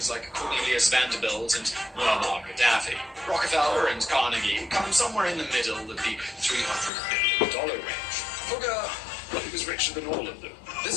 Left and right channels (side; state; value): right; drops out; at 6.9 s